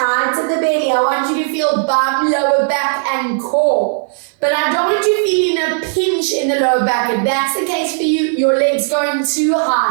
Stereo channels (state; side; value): silent; left; 56 dB below the other